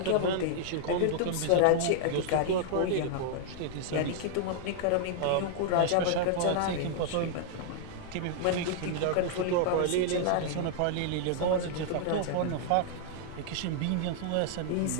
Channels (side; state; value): both; different; correlation -0.01